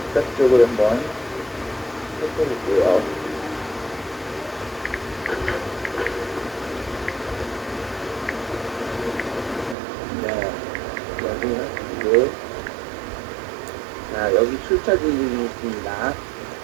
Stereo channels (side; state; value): left; drops out; at 9.8 s